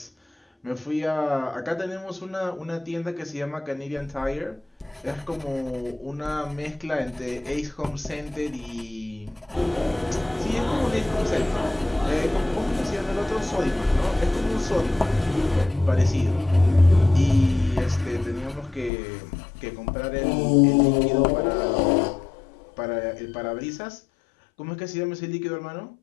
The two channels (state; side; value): drops out; right; at 18.9 s